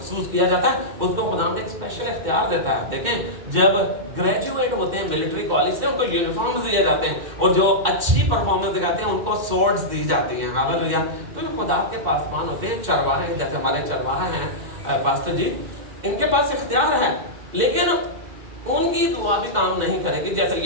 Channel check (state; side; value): late; left; 2.1 ms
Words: किया जाता है उसको खुदा ने एक स्पेशल इख्तियार देता है। देखें जब ग्रेजुएट होते हैं मिलिट्री कॉलेज से उनको यूनिफॉर्म्स दिए जाते हैं और जो अच्छी परफॉर्मेंस दिखाते हैं उनको स्वॉर्ड्स दी जाती हैं। हालेलुया। तो जो खुदा के पासबान होते हैं चरवाहे, जैसे हमारे चरवाहे हैं पास्टर जी, इनके पास इख्तियार है लेकिन उनकी दुआ भी काम नहीं करेगी। जैसे